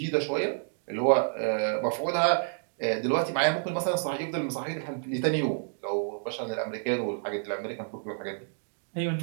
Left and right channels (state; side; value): silent; left; digital silence